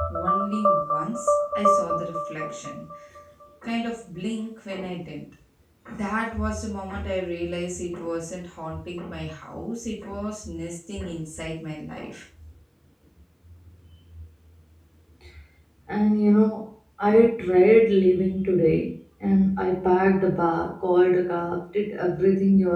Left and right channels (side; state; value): both; identical; correlation 1.00